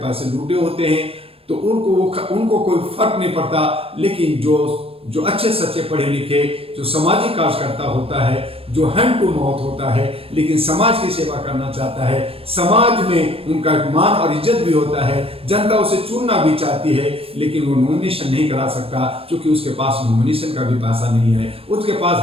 पैसे लूटे होते हैं, तो उनको कोई फर्क नहीं पड़ता। लेकिन जो अच्छे सच्चे पढ़े लिखे, जो सामाजिक कार्यकर्ता होता है, जो हैंड टू माउथ होता है, लेकिन समाज की सेवा करना चाहता है, समाज में उनका मान और इज्जत भी होता है, जनता उसे चुनना भी चाहती है, लेकिन वो नॉमिनेशन नहीं करा सकता, क्योंकि उसके पास नॉमिनेशन का भी पैसा नहीं है, उसके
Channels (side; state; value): left; late; 0.28 ms